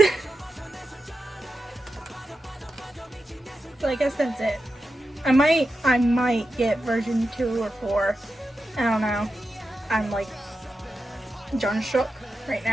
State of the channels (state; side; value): normal; both; correlation 0.90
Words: So I guess that's it. I might get version 2 or 4. I don't know. I'm like John shook right